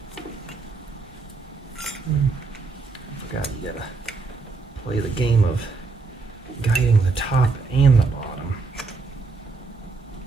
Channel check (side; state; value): left; quieter; 4.2 dB